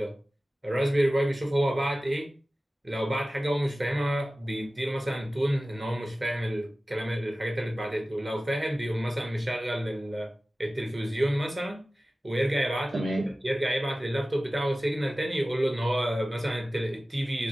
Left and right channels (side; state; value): both; normal; correlation 0.96